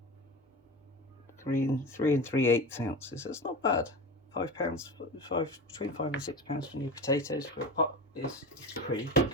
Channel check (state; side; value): normal; both; correlation 0.28